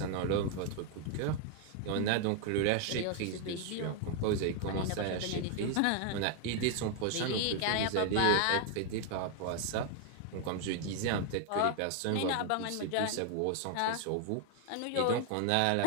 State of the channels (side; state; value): both; different; correlation 0.00